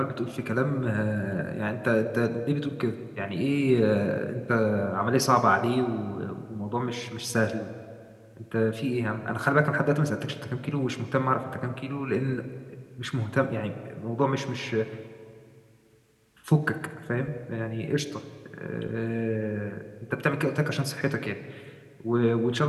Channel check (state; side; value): identical; both; correlation 1.00